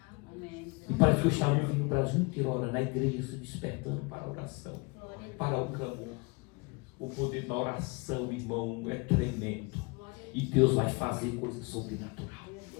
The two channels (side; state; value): right; quieter; 29.3 dB